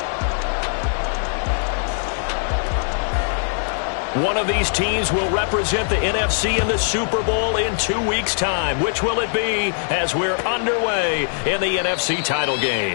One of these teams will represent the NFC in the Super Bowl in 2 weeks' time. Which will it be as we're underway in the NFC title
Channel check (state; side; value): silent; right; digital silence